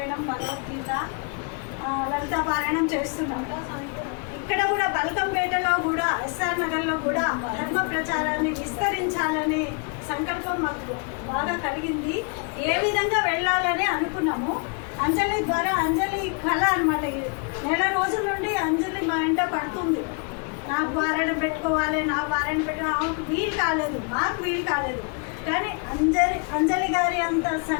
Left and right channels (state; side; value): quieter; right; 35.4 dB